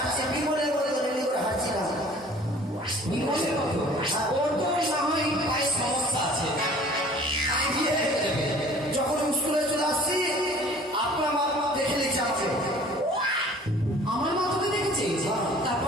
বিমলে বলে রেডি করে হাঁটছিলাম। বিমলের মতো? ওর তো না হয় পায়ে সমস্যা আছে। তাই দিয়ে হয়ে যাবে। যখন স্কুলে চলে আসছি, আপনার মা দেখে নিচ্ছে আমাকে।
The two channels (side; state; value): both; normal; correlation 0.50